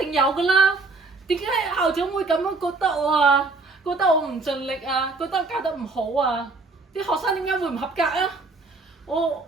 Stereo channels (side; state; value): left; quieter; 3.7 dB